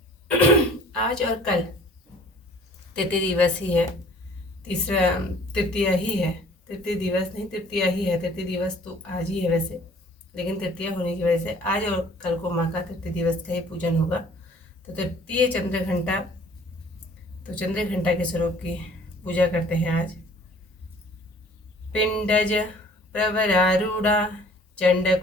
आज और कल तृतीय दिवस ही है। तीसरा तृतीया ही है, तृतीय दिवस नहीं, तृतीया ही है। तृतीय दिवस तो आज ही है वैसे, लेकिन तृतीया होने की वजह से आज और कल को माँ का तृतीय दिवस का ही पूजन होगा। तो तृतीय चंद्रघंटा, तो चंद्रघंटा के स्वरूप की पूजा करते हैं आज। पिंडज प्रवरारूढ़ा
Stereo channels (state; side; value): normal; both; correlation 0.53